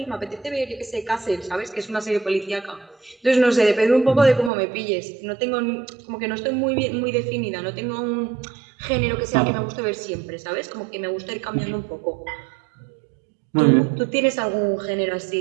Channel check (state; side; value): drops out; left; at 4.5 s